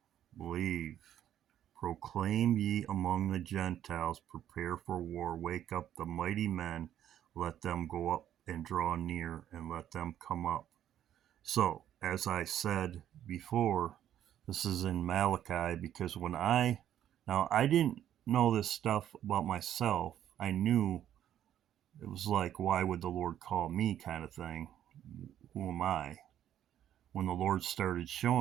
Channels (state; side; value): quieter; left; 11.0 dB